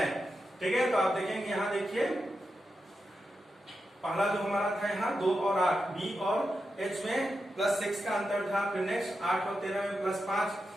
ठीक है। तो आप देखेंगे यहाँ देखिए पहला जो हमारा था यहाँ 2 और 8, B और H में +6 का अंतर था। फिर नेक्स्ट 8 और 13 में +5,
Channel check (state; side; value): normal; both; correlation 0.88